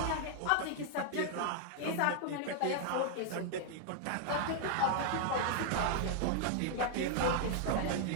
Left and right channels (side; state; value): both; different; correlation 0.00